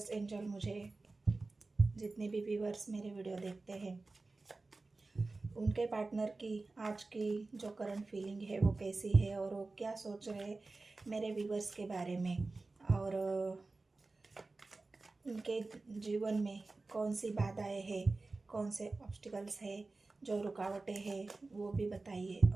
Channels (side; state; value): left; quieter; 3.5 dB